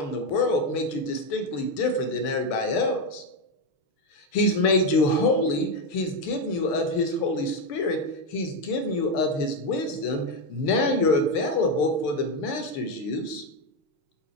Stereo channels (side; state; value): right; late; 6.9 ms